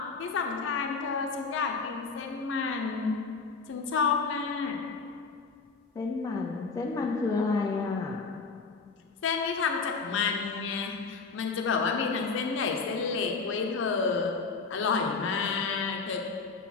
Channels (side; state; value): right; quieter; 4.6 dB